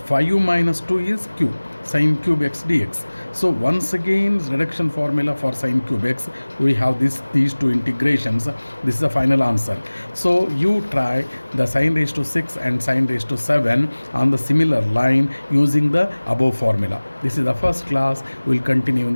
5 minus 2 is q, sin cube x dx. So once again, reduction formula for sin cube x, we have these two integrations. This is the final answer. So you try the sin raised to 6 and sin raised to 7 on the similar line using the above formula. This is the first class. We'll continue in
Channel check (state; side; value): inverted; both; correlation -1.00